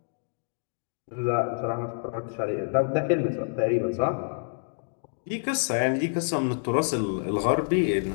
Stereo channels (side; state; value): right; silent; digital silence